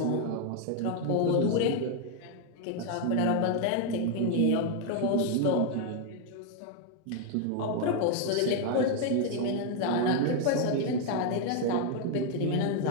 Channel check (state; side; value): different; both; correlation 0.01